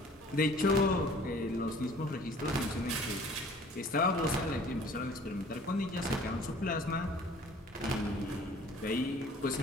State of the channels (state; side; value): normal; both; correlation 0.51